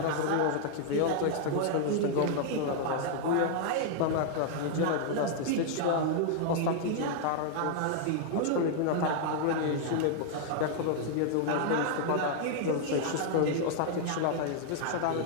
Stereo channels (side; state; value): both; different; correlation -0.01